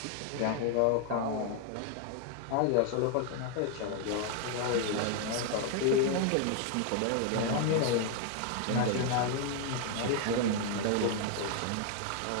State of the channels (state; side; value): different; both; correlation 0.00